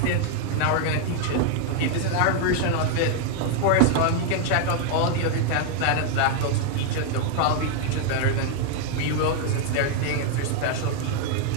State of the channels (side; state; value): both; different; correlation 0.00